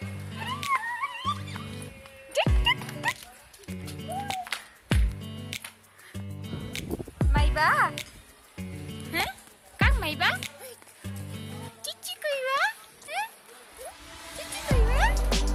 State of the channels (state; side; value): identical; both; correlation 1.00